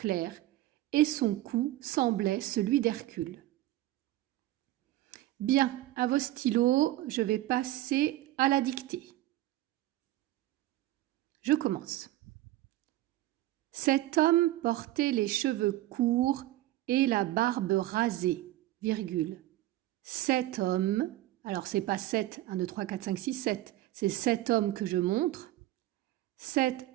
et son cou semblait celui d'Hercule. Bien, à vos stylos, je vais passer à la dictée. Je commence. Cet homme portait les cheveux courts et la barbe rasée, virgule. Cet homme, alors c'est pas 7, 1, 2, 3, 4, 5, 6, 7, c'est cet homme que je montre. Cet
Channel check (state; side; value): quieter; left; 15.6 dB